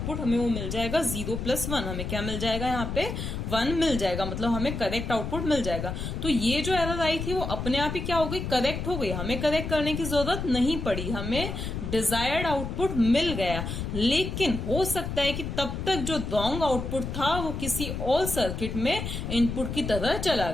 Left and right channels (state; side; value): noise; left; rumble, 5 dB below the sound